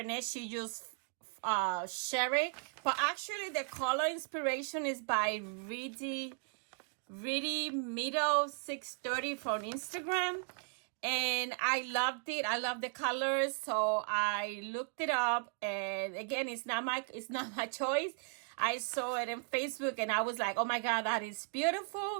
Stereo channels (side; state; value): left; quieter; 37.4 dB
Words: She just share it, but actually the color inspiration is by Really Middle 630 from Instagram, and I loved it. I love the colors, so I looked it up, and again, it's not my choice. I saw it in Facebook, and I was like, oh my god, that is